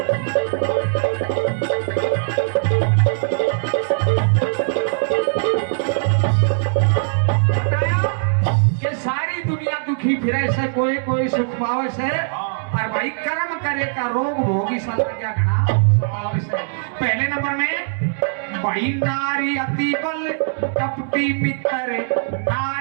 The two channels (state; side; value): silent; left; digital silence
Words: फिरे से कोई कोई सुख पावे से और भाई कर्म करे का रोग भोगी साला क्या घना सतावे से। पहले नंबर में भाई नारी अति बल कपटी मित्र,